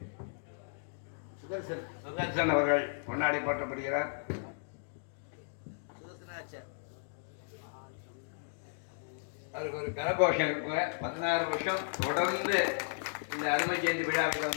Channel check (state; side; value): silent; right; digital silence